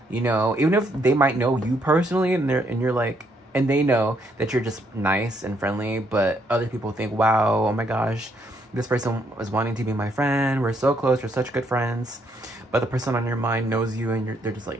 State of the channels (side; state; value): both; normal; correlation 0.72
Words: You know, even if they might know you personally, and you're like, and they know that you're just nice and friendly, but other people think, wow, oh my gosh, this person was wanting to be my friend. We're so close. We're such good friends. But the person on your mind knows you, and they're just